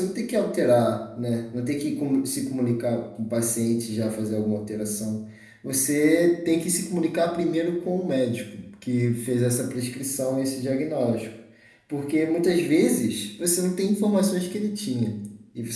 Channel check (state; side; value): identical; both; correlation 1.00